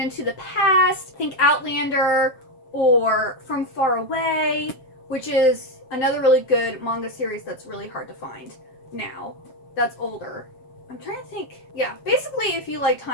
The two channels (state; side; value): late; right; 7.7 ms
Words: the past, think Outlander or From Far Away, which is another really good manga series that's really hard to find now. That's older. I'm trying to think. Yeah, basically if you like